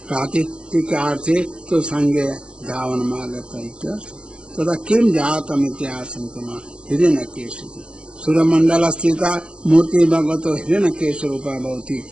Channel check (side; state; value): left; late; 0.055 ms